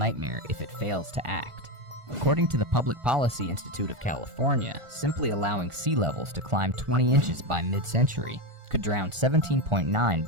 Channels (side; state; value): left; late; 1.4 ms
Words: if it fails to act. According to the Public Policy Institute of California, simply allowing sea levels to climb 20 inches by mid-century could drown